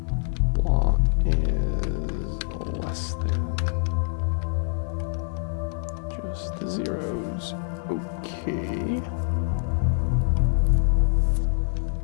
blah is less than just the zeros. Okay.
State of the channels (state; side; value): silent; right; digital silence